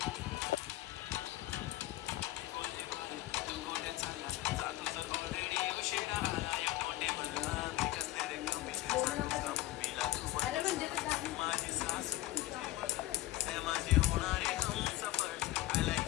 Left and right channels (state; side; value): quieter; right; 17.0 dB